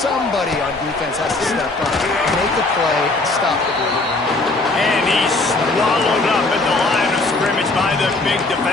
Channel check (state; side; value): quieter; right; 3.2 dB